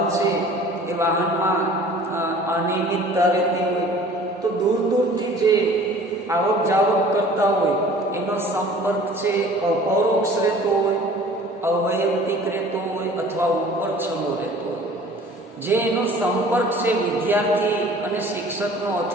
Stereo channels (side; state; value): both; normal; correlation 0.48